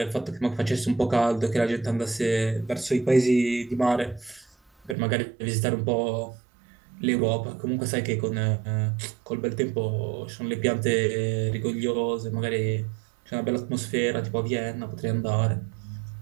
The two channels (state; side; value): drops out; left; at 5.0 s